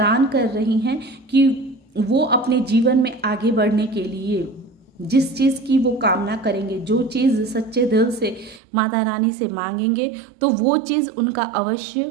कर रही हैं कि वो अपने जीवन में आगे बढ़ने के लिए जिस चीज़ की वो कामना करेंगे, जो चीज़ सच्चे दिल से माता रानी से मांगेंगे, तो वो चीज़ उनका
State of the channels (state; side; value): drops out; left; at 8.6 s